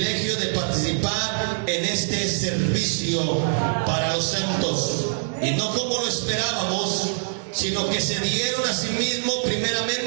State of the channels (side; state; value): left; silent; digital silence